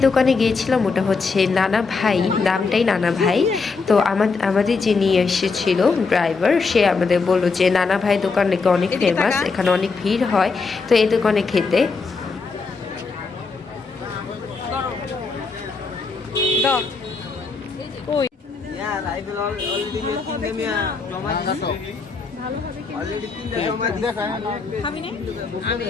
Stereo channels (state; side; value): quieter; right; 4.5 dB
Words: দোকানে গিয়েছিলাম ওটা হচ্ছে নানা ভাই, নামটাই নানা ভাই। তো আমাদের যে নিয়ে এসেছিল ড্রাইভার, সে আমাদের বললো যে নানা ভাই দোকান নাকি অনেক ফেমাস, এখানে অনেক ভিড় হয়, তো এই দোকানে খেতে।